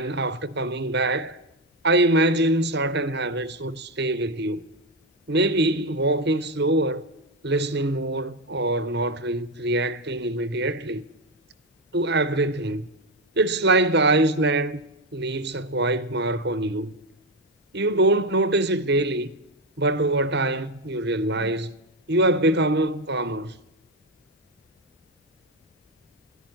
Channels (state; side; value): normal; both; correlation 0.10